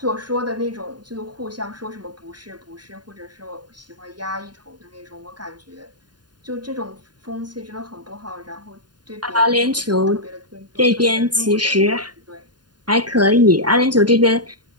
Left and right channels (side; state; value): left; late; 0.70 ms